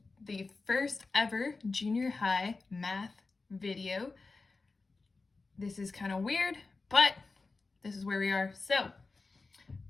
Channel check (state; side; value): quieter; right; 3.9 dB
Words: the first ever junior high math video. This is kind of weird, but this is where we are. So